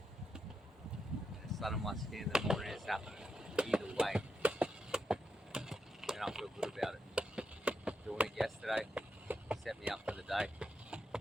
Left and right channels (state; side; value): normal; both; correlation 0.84